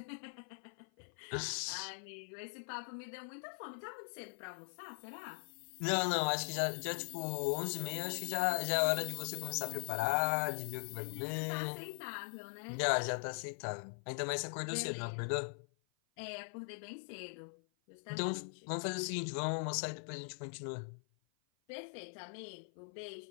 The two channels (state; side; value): silent; right; 51 dB below the other